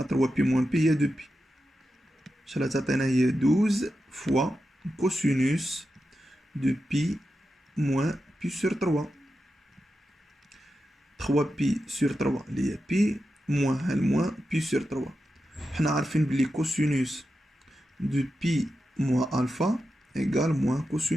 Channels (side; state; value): both; normal; correlation 0.90